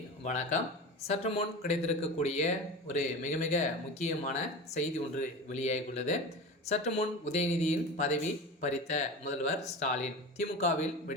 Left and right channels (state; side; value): normal; both; correlation 0.30